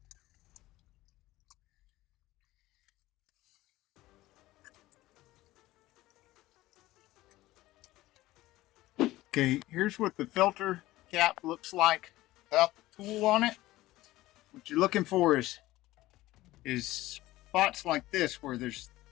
Okay, here's what the filter cap looks like without the tool on it. What you're looking for is spots like this, where there's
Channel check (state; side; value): quieter; right; 17.2 dB